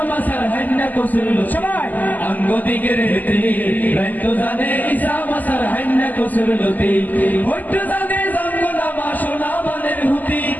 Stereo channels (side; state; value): right; late; 0.082 ms